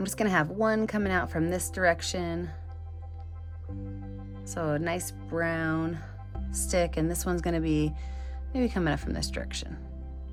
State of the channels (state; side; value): identical; both; correlation 1.00